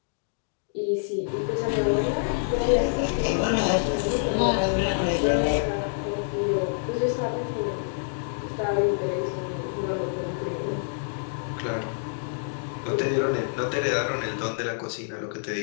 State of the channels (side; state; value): right; silent; digital silence